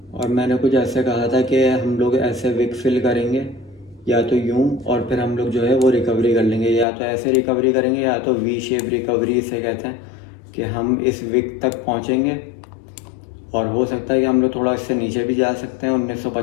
और मैंने कुछ ऐसे कहा था कि हम लोग ऐसे विक फिल करेंगे या तो यूं, और फिर हम लोग जो है वो रिकवरी कर लेंगे, या तो ऐसे रिकवरी करेंगे या तो वी शेप रिकवरी इसे कहते हैं कि हम इस विक तक पहुंचेंगे और हो सकता है कि हम लोग थोड़ा इससे नीचे भी जा सकते हैं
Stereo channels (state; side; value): drops out; right; at 6.9 s